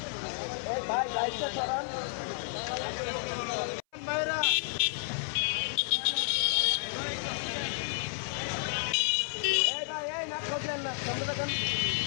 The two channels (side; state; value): right; silent; 57 dB below the other